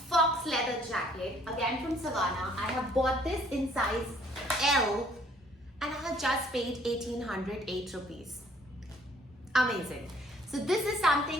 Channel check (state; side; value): normal; both; correlation 0.61